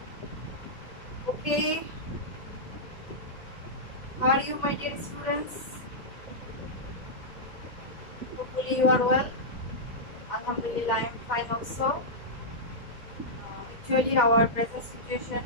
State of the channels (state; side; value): late; right; 2.1 ms